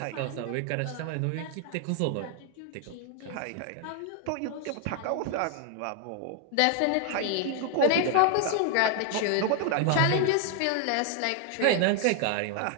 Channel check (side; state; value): both; different; correlation 0.00